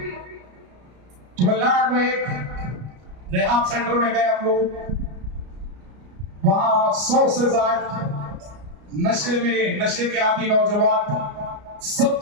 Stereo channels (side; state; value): left; late; 33 ms